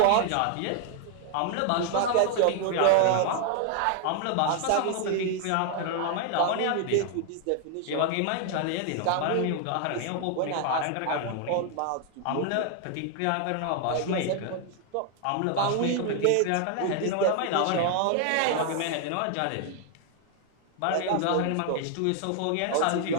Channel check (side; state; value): both; different; correlation 0.00